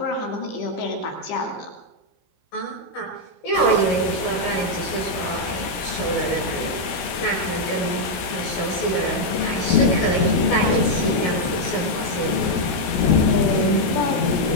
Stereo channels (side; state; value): right; late; 16 ms